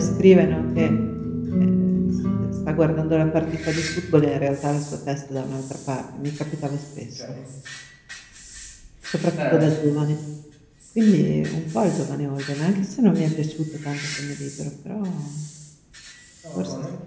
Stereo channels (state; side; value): identical; both; correlation 1.00